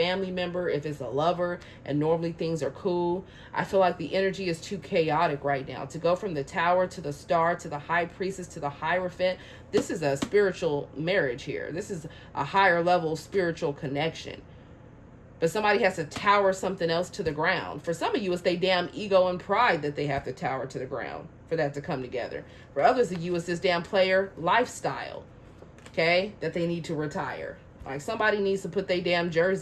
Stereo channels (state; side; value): identical; both; correlation 1.00